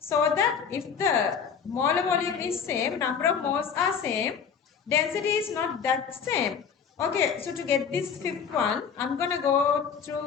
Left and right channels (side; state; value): right; quieter; 6.8 dB